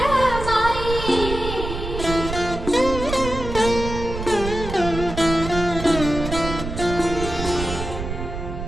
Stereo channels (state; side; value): noise; right; rumble, 6 dB below the sound